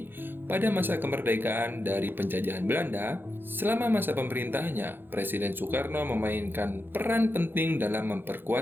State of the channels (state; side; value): late; left; 0.099 ms